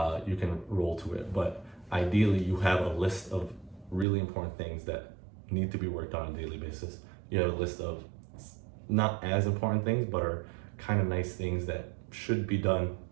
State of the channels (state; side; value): drops out; left; at 4.0 s